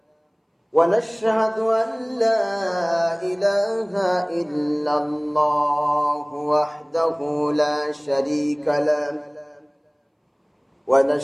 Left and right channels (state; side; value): identical; both; correlation 1.00